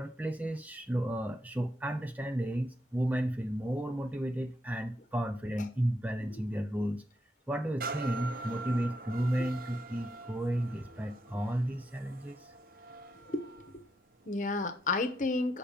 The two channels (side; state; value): both; normal; correlation 0.81